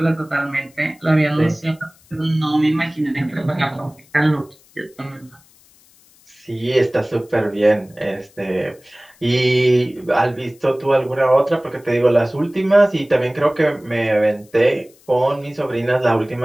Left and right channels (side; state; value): left; noise; hiss, 29 dB below the sound